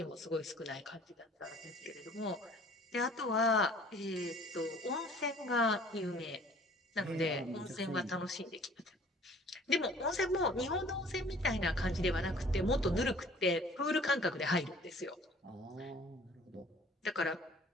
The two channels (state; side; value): normal; both; correlation 0.52